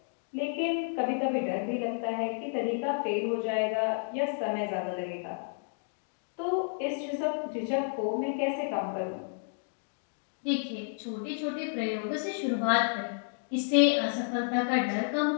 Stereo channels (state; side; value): silent; right; digital silence